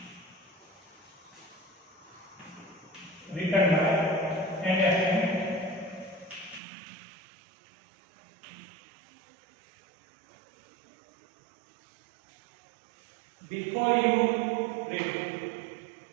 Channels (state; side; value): drops out; left; at 6.6 s